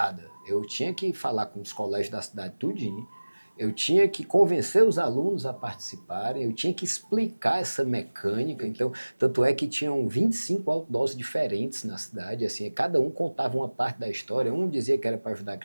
Eu tinha que falar com os colégios da cidade tudinho, eu tinha que convencer os alunos a participarem, eu tinha que explicar essa mecânica. Então, tanto é que tinham 25 outdoors diferentes na cidade, assim, cada um contava uma parte da história. Um dizia que era para ajudar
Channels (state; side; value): inverted; both; correlation -1.00